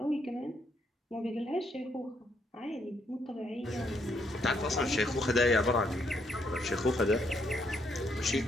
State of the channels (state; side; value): normal; both; correlation 0.74